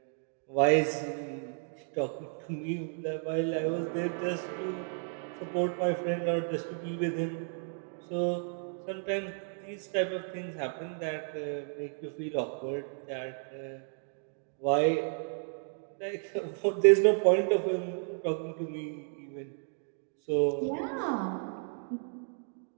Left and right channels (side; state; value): left; silent; 56 dB below the other